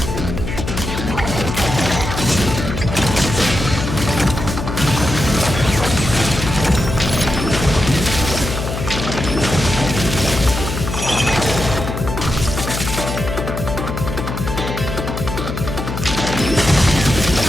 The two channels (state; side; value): noise; left; hum, 5 dB below the sound